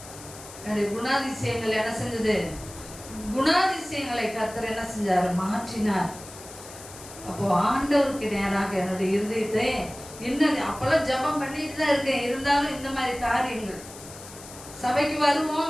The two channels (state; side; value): noise; left; hiss, 16 dB below the sound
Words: என்னுடைய குணாதிசயங்கள் என்ன செஞ்சது, குணாதிசயங்களை கர்த்தர் என்ன செஞ்சார், மாற்றினார். அப்போ ஆண்டவருக்கு நேராக என்னுடைய இருதயத்தை இன்னும் அப்பெல்லாம் ஜபம் பண்ணிட்டு தான் இருக்கேன். இருந்தாலும் இந்த மாதிரி காரியங்கள் சபைக்கு